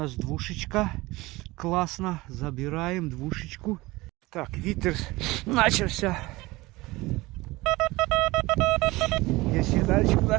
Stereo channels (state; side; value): quieter; left; 20.8 dB